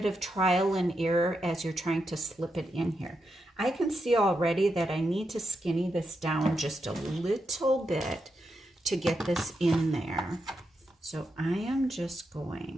of trial and error as you're trying to slip it in here. I can see already that I need to skinny this down just a little bit to get this in there. So I am just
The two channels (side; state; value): both; normal; correlation 0.85